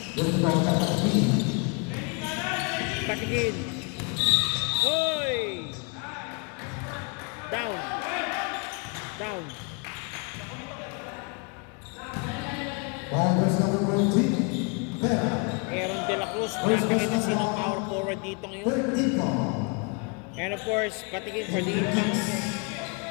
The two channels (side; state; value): right; quieter; 32.9 dB